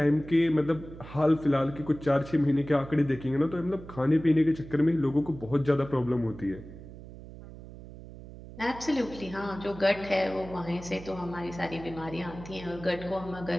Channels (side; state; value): right; noise; hum, 15 dB below the sound